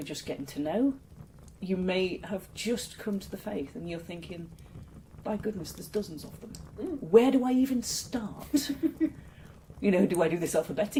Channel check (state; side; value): identical; both; correlation 1.00